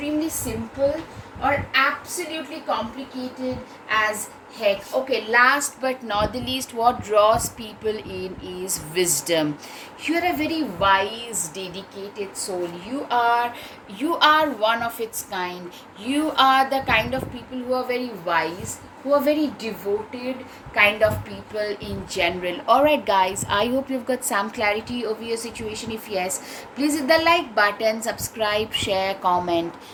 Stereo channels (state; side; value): identical; both; correlation 1.00